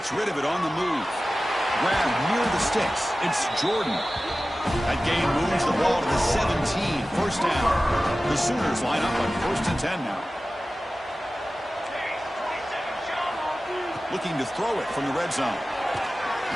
rid of it on the move. Grab near the sticks. It's Jordan. That gain moves the ball to the 17. First down. The Sooners line up on 1st and 10 now. Looking to throw it from the red zone.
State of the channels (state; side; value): normal; both; correlation 0.96